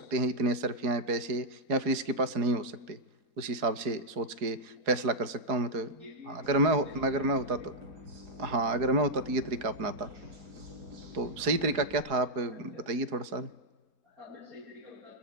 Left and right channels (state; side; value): late; left; 4.7 ms